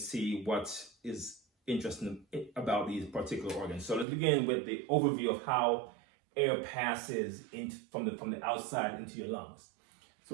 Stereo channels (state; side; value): drops out; left; at 4.0 s